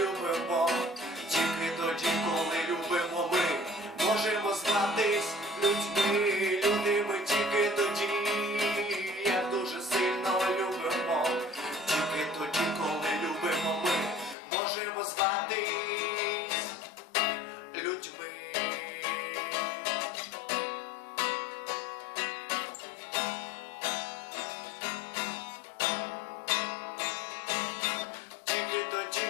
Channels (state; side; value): drops out; right; at 14.4 s